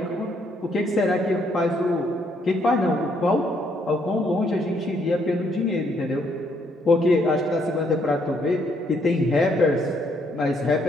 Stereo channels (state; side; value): normal; both; correlation 0.71